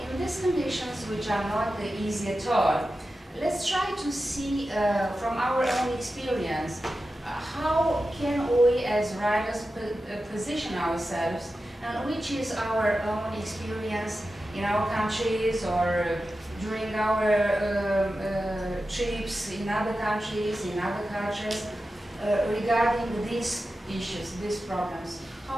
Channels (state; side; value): normal; both; correlation 0.92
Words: in these conditions, which are not easy at all, let's try to see from our own experience how can we as writers position ourselves, and which is our own experience in our countries or during our trips in other countries, in other cultures, regarding these issues, these problems.